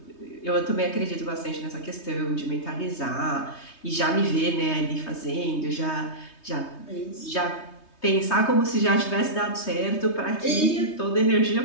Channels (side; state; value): right; late; 3.2 ms